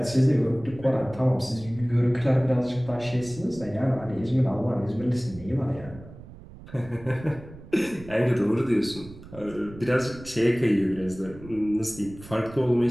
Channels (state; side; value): noise; right; rumble, 17 dB below the sound